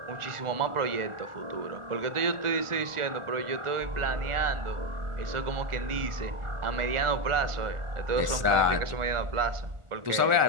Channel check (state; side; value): late; left; 1.4 ms